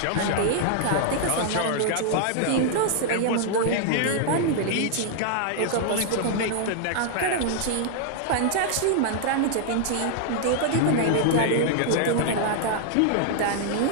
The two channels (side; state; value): both; different; correlation -0.01